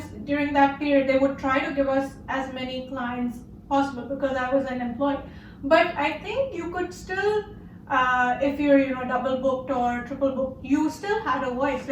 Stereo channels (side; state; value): both; identical; correlation 1.00